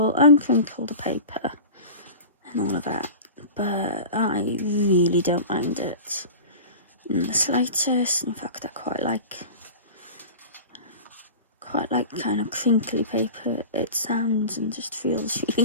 and crinkle the paper and all of that. But I really don't mind it in the slightest. In fact, I quite like kind of crinkly paper. It sounds and just feels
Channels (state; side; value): inverted; both; correlation -0.34